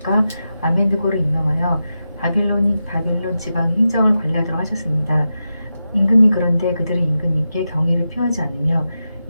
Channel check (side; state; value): both; inverted; correlation -0.90